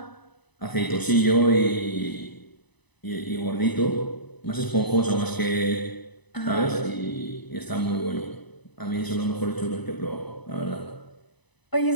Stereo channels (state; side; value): late; right; 1.0 ms